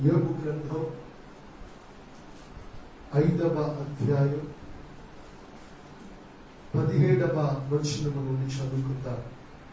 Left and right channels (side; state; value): both; identical; correlation 1.00